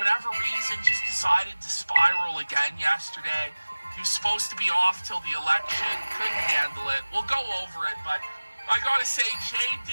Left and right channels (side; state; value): both; inverted; correlation -1.00